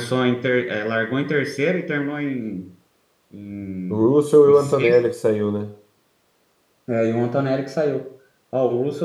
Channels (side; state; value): both; identical; correlation 1.00